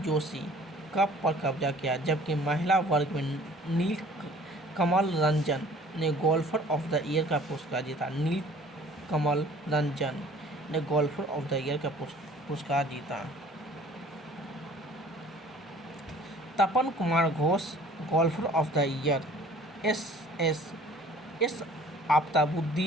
जोशी कप पर कब्जा किया, जबकि महिला वर्ग में नील कमल रंजन ने गोल्फर ऑफ द ईयर का पुरस्कार जीता। नील कमल रंजन ने गोल्फर ऑफ द ईयर का पुरस्कार जीता। Tapan Kumar Ghosh golfer of the year. S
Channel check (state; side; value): normal; both; correlation 0.51